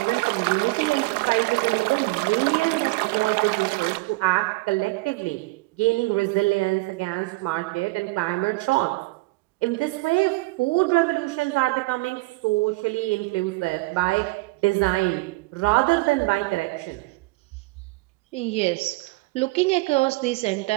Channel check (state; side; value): quieter; left; 23.0 dB